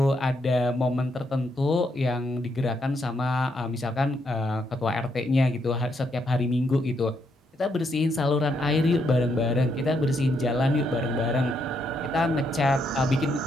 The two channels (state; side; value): normal; both; correlation 0.77